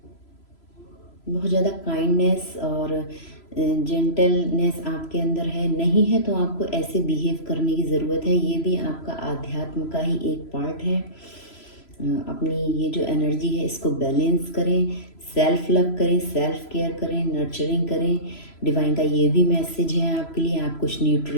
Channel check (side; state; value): right; late; 3.0 ms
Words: बहुत ज़्यादा काइंडनेस और जेंटलनेस आपके अंदर है। नहीं है तो आपको ऐसे बिहेव करने की ज़रूरत है। ये भी आपका आध्यात्म का ही एक पार्ट है। अपनी ये जो एनर्जी है इसको बैलेंस करें, सेल्फ लव करें, सेल्फ केयर करें, नर्चरिंग करें। डिवाइन का ये भी मैसेज है आपके लिए। आप कुछ